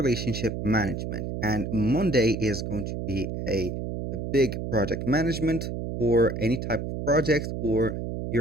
Management. And Monday is going to be a big project management for any type of project, or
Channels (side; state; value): right; noise; hum, 5 dB below the sound